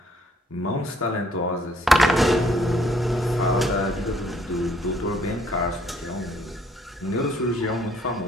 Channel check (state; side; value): normal; both; correlation 0.64